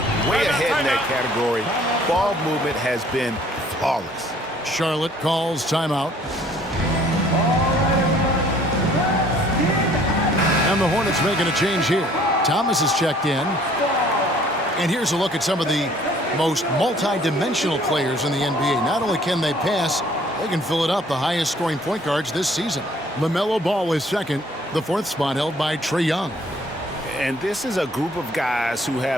way ahead in that category. Ball movement has been flawless. Charlotte calls timeout. And the Hornets making a change here. Thomas is checked in. And here's a look at some of the most multi-dimensional players in the NBA. Not only can they pass, they can fill it up, the highest scoring point guards this season. LaMelo Ball is second, the 4th spot held by Trae Young. And this is a group of guys who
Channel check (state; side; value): normal; both; correlation 0.58